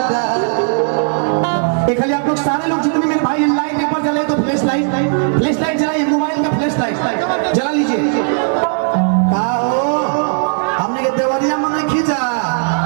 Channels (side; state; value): left; silent; 69 dB below the other